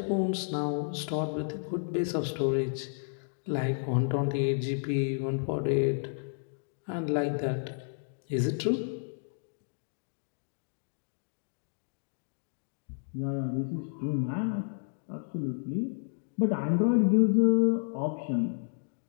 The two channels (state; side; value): silent; right; digital silence